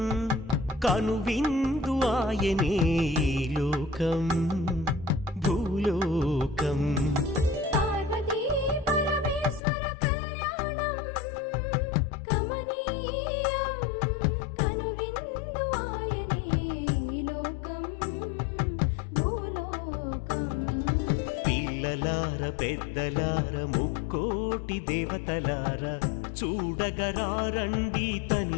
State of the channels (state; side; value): drops out; right; at 9.6 s